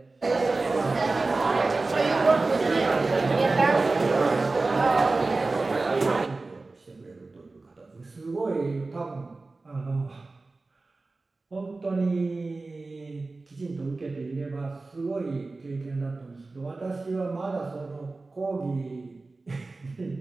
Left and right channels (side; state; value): left; quieter; 3.5 dB